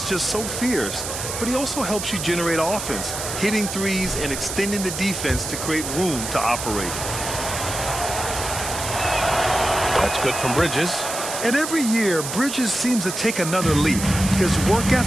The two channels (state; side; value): noise; right; hiss, 6 dB below the sound